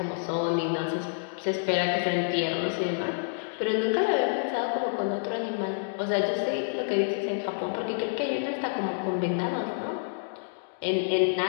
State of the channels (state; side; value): silent; right; digital silence